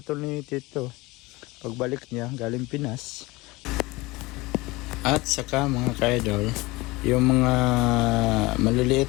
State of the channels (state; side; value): quieter; right; 22.1 dB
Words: ni Tito pagbalik niya galing Pinas. At saka mga kaidol, yung mga